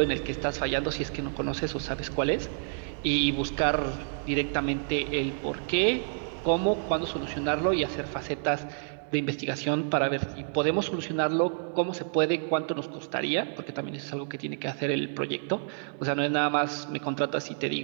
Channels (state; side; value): silent; left; digital silence